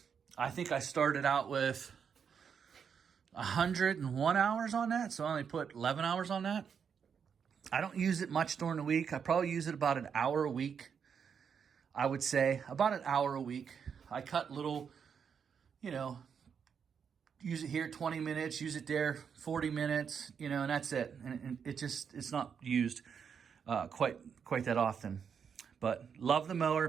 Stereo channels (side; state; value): left; quieter; 7.0 dB